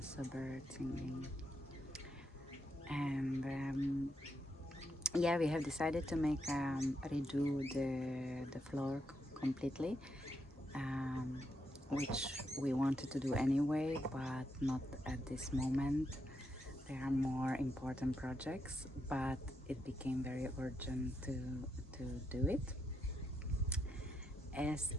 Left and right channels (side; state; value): both; normal; correlation 0.81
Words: birds singing. And yeah, we have decided to make redo the floor completely, um, which we wanted to do anyway, but not at this moment. There are more important projects, but it became very urgent to do it. As